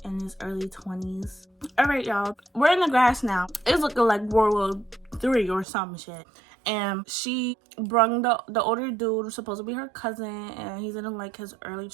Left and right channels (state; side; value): drops out; left; at 5.7 s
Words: in his early 20s. All right, y'all. We're in the grass now. It's looking like World War III or some shit. And she brung the older dude, supposed to be her cousin, and he's in like his early